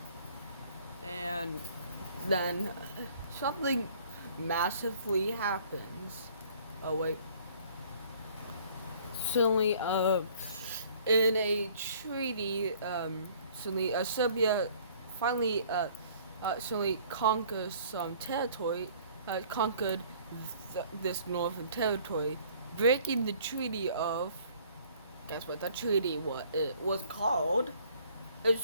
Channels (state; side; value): inverted; both; correlation -0.56